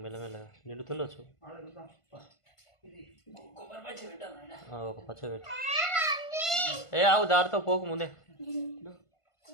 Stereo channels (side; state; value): right; late; 1.5 ms